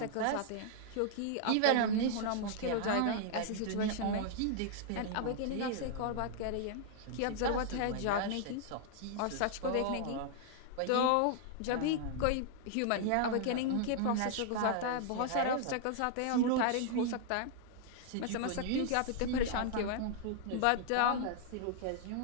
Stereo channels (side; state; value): both; different; correlation 0.00